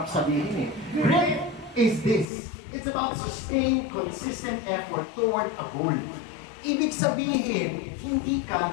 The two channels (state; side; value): drops out; right; at 2.2 s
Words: sabihin eh. Grit is this. It's about sustained, consistent effort toward a goal. Ibig sabihin, hindi